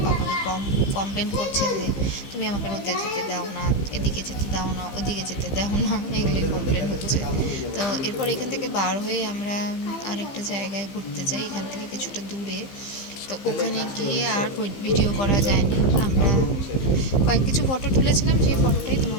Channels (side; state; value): right; late; 15 ms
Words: পাপাকে কমপ্লেন করছে যে তুমি আমাকে রোদে যেতে দাও না, এদিকে যেতে দাও না, ওদিকে যেতে দাও না, এগুলোই কমপ্লেন হচ্ছে। তো এরপর এখান থেকে বার হয়ে আমরা আরেকটা জায়গায় ঘুরতে যাই, এখান থেকে কিছুটা দূরে। তো ওখানে গিয়ে আর ভিডিও করা যায়নি, আমরা কিছু ফটো তুলেছিলাম, সেই ফটোটাই